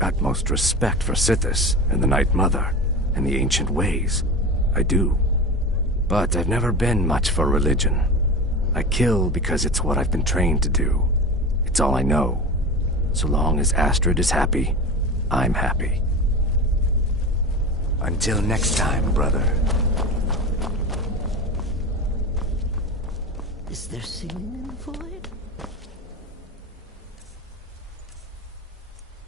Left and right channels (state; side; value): normal; both; correlation 0.27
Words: respect for Sithis and the Night Mother and the ancient ways. I do. But I've never been much for religion. I kill because it's what I've been trained to do. It's all I know. So long as Astrid is happy, I'm happy. Until next time, brother. Is there singing in the void?